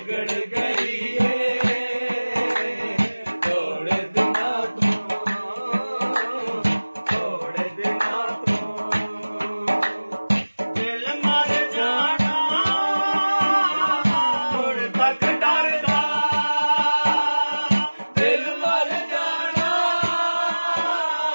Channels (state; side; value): inverted; both; correlation -1.00